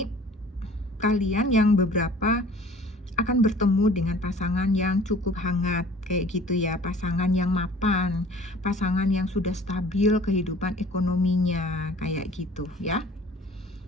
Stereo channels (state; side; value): normal; both; correlation 0.49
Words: kalian yang beberapa akan bertemu dengan pasangan yang cukup hangat kayak gitu ya, pasangan yang mapan, pasangan yang sudah stabil kehidupan ekonominya kayak gitu ya.